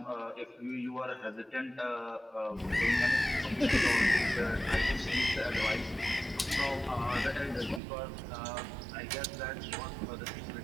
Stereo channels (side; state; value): left; drops out; at 7.8 s